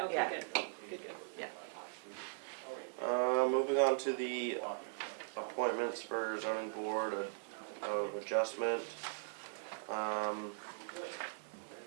yeah. good. Good. Yeah. Moving on to the appointments for zoning board of adjustment.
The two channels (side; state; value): left; silent; digital silence